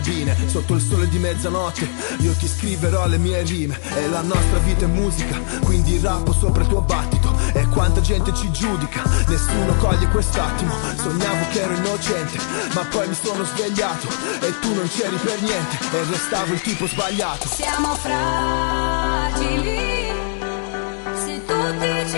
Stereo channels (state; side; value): silent; right; 59 dB below the other